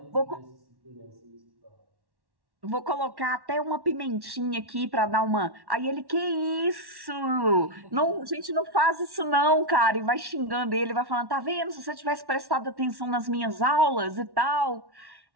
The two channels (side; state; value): left; late; 1.1 ms